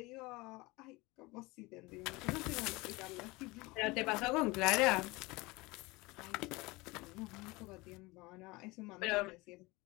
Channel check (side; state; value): right; quieter; 23.2 dB